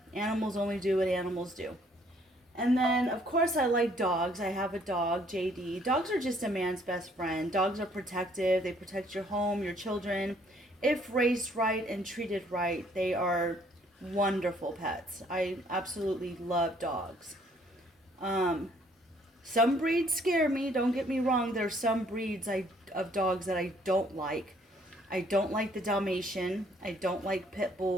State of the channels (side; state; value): both; normal; correlation 0.63